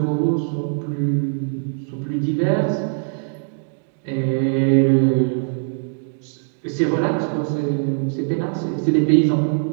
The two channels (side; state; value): left; silent; digital silence